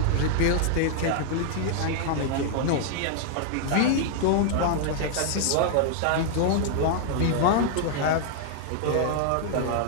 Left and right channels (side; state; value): both; different; correlation -0.01